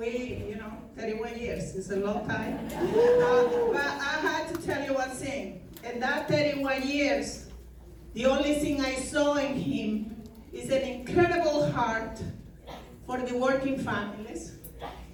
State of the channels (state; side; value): identical; both; correlation 1.00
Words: 31 years is a long time. But I had to tell you one thing. In that 31 years, the only thing I saw in him is an incredible heart for the working families,